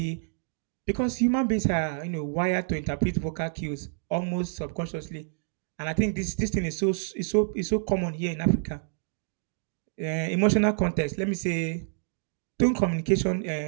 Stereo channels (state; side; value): silent; left; digital silence